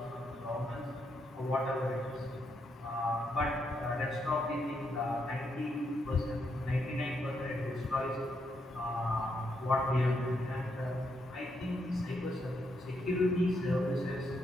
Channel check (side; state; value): both; normal; correlation 0.79